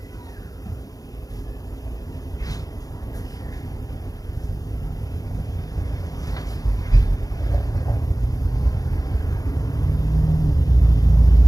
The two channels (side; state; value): right; late; 0.17 ms